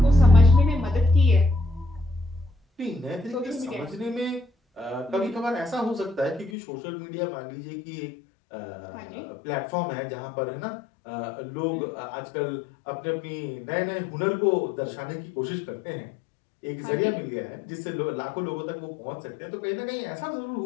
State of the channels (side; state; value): right; drops out; at 6.5 s